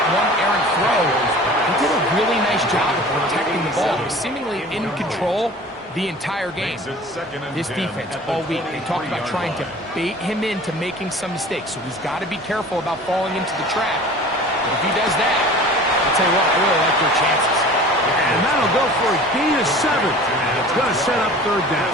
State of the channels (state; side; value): normal; both; correlation 0.43